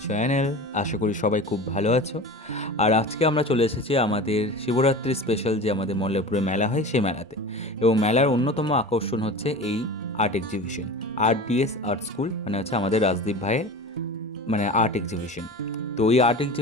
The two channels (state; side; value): normal; both; correlation 0.33